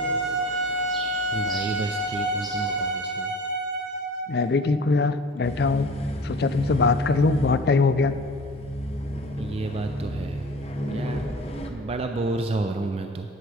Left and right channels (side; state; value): both; normal; correlation 0.40